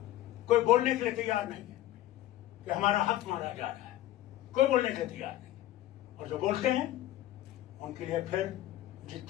कोई बोलने के लिए तैयार नहीं है कि हमारा हक मारा जा रहा है. कोई बोलने के लिए तैयार नहीं है. और जो बोलते हैं उनके लिए फिर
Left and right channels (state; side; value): quieter; right; 14.6 dB